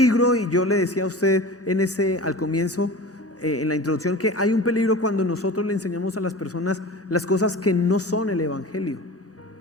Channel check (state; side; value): normal; both; correlation 0.35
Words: y yo le decía a usted al comienzo, en la introducción, que hay un peligro cuando nosotros le enseñamos a las personas las cosas que no son el evangelio.